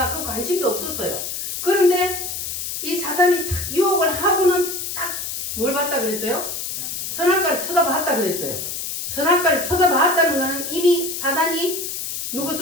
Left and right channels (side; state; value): left; noise; hiss, 5 dB below the sound